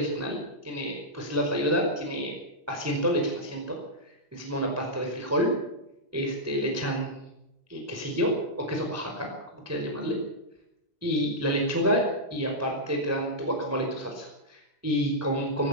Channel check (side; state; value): both; normal; correlation -0.11